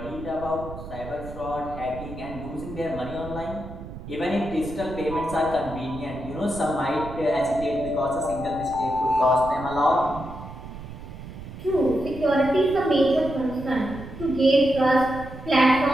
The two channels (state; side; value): noise; right; rumble, 12 dB below the sound